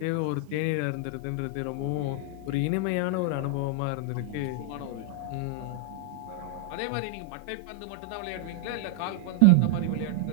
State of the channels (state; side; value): different; both; correlation 0.00